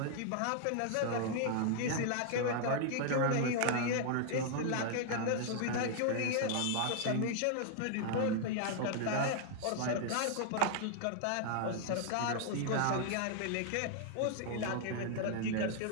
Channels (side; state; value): both; different; correlation 0.00